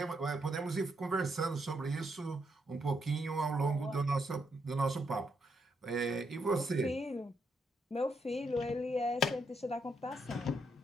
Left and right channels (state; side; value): normal; both; correlation 0.78